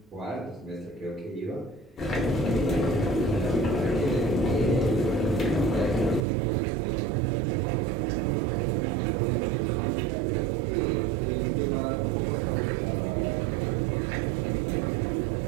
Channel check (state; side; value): drops out; left; at 6.2 s